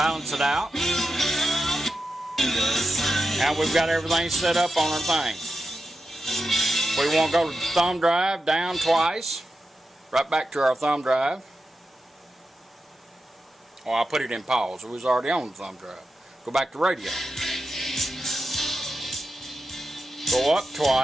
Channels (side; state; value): both; normal; correlation 0.90